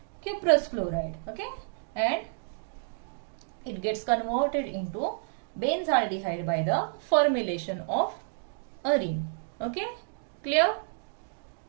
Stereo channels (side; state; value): left; silent; digital silence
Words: cuprous chloride. Okay, and it gets converted into benzaldehyde by the formulation of arene. Okay, clear?